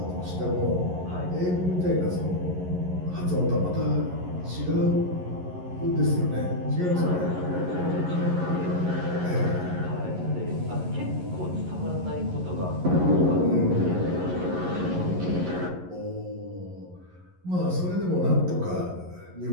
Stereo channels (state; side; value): late; left; 11 ms